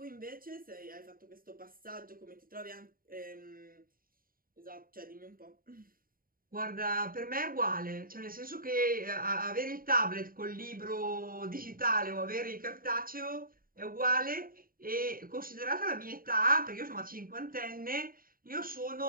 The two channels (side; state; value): left; late; 0.41 ms